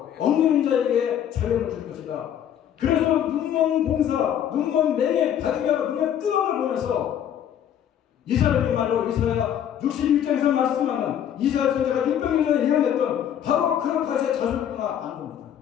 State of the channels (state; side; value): quieter; right; 9.8 dB